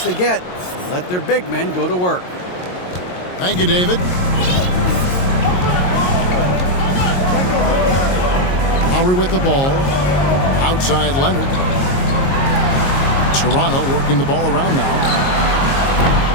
they get and let their big men go to work. Thank you, David. Lowry with the ball. Outside Leonard. Toronto working the ball around now.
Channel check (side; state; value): right; late; 22 ms